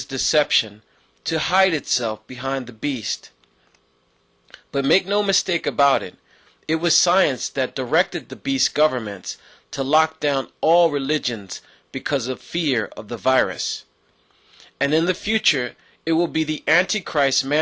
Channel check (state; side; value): identical; both; correlation 1.00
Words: deception to hide itself behind the beast. But make no mistake about it, it was science that directed the beast governments to lock down all religions because of fear of the virus. And in the future, it will be the Antichrist,